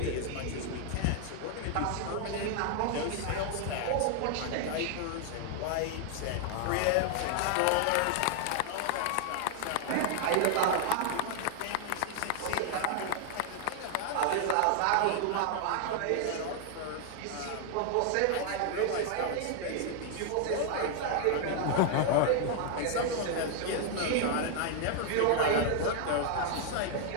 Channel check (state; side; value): different; both; correlation 0.00